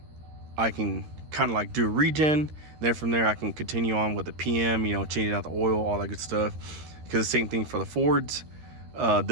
can kind of like do a regen. Then from there, I can continue on with the PM, changing out the oil, all that good stuff. Because the same thing for the Fords.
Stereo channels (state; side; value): late; left; 13 ms